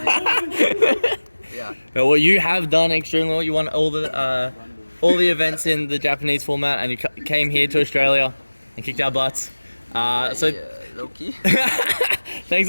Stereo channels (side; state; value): both; inverted; correlation -1.00